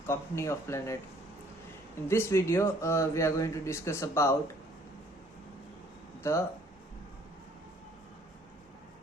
company of planet. In this video we are going to discuss about the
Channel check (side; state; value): both; normal; correlation 0.59